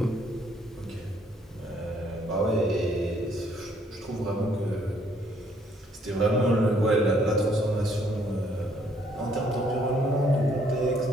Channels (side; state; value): both; normal; correlation 0.66